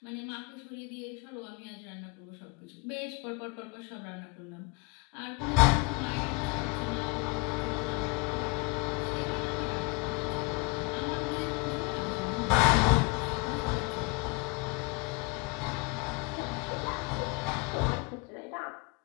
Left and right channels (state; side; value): quieter; right; 28.3 dB